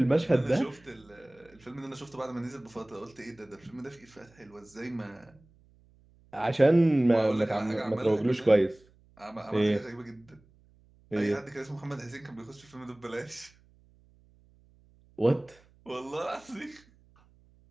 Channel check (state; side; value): noise; right; hum, 29 dB below the sound